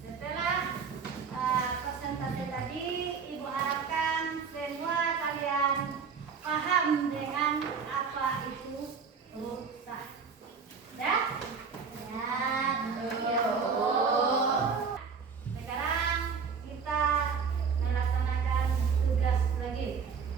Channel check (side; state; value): left; quieter; 5.8 dB